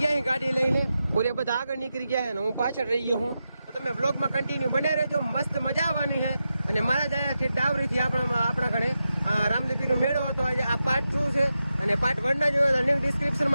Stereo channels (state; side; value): inverted; both; correlation -0.89